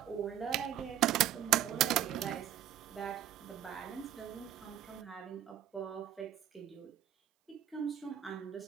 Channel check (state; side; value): quieter; left; 11.0 dB